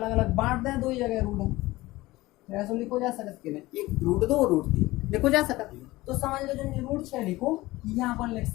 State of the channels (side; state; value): right; quieter; 19.1 dB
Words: अलग बांट दें, 2 ही जगह रूट है, ऐसा लिखो जा सकते हैं, एक √2 √3 लिखो जा सकता। तो समझ लो जो √6 लिखो यहाँ पर लिख